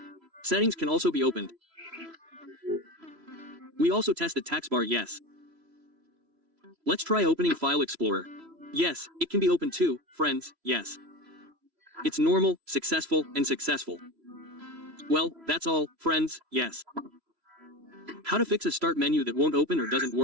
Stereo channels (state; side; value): late; left; 3.0 ms